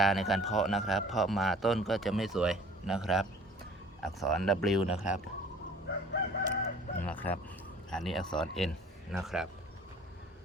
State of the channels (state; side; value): normal; both; correlation 0.50